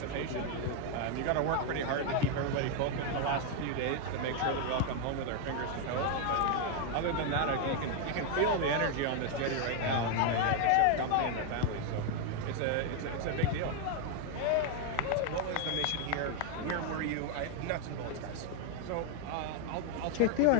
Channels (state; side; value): different; both; correlation 0.01